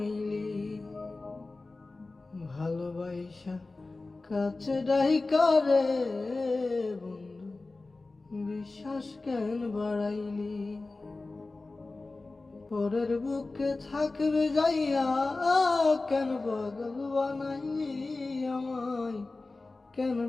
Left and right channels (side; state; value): right; quieter; 3.4 dB